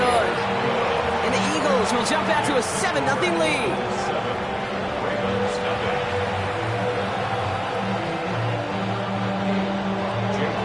And the Eagles will jump out to a 7-0 lead.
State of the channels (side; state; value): both; identical; correlation 1.00